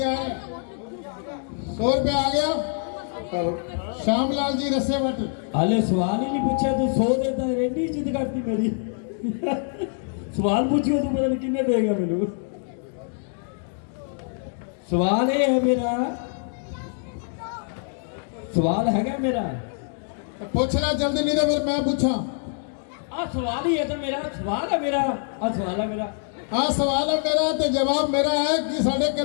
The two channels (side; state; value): right; silent; 57 dB below the other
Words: है? 100 रुपया आ गया। श्यामलाल जी रस्से भट्ट। हाले सवाल ही नहीं पूछा तू 100 देता है, रेडी इज्जत करती मेरी सवाल पूछियो तू पता नहीं कितने देगा मेनू। सवाल ये है मेरा, सवाल हैगा मेरा। पूछना जल्दी नहीं तो फिर मैं पूछा। सवाल ही है तो मेरा सवाल है मेरा। सवाल है मेरा। हाँ सवाल है मेरा तो जवाब मेरा है कि साढ़े